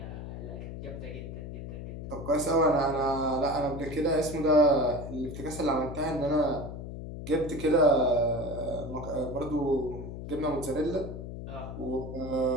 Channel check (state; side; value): noise; left; hum, 9 dB below the sound